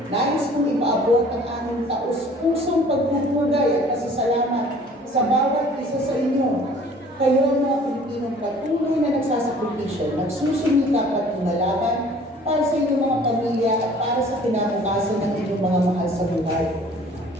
nais kong ipaabot ang aming taus-pusong pagpupugay at pasasalamat sa bawat isa sa inyo. Kayo mga Pilipinong patuloy na nagsasakripisyo, nagsusumikap at lumalaban para sa inyong mga pamilya at para sa kinabukasan ng inyong mga mahal sa buhay.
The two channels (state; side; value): normal; both; correlation 0.51